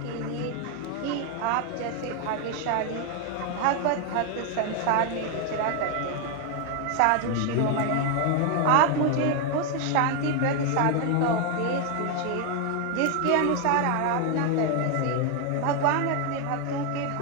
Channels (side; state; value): both; different; correlation 0.01